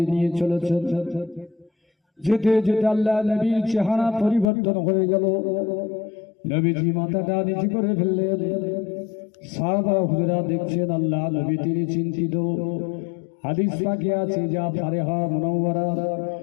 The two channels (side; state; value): right; drops out; at 4.5 s